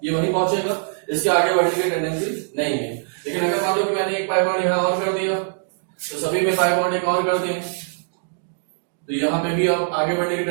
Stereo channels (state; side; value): silent; left; 64 dB below the other